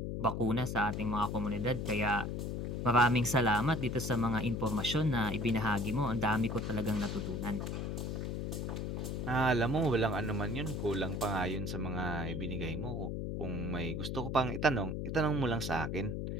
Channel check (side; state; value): left; noise; hum, 3 dB below the sound